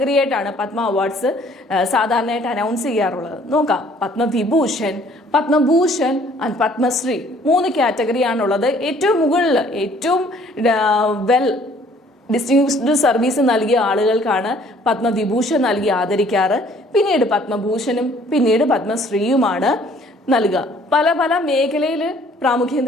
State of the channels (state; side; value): normal; both; correlation 0.58